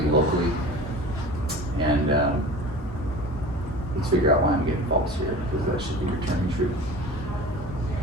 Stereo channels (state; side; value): normal; both; correlation 0.39